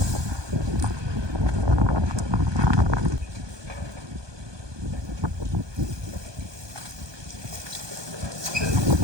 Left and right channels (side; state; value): left; late; 1.2 ms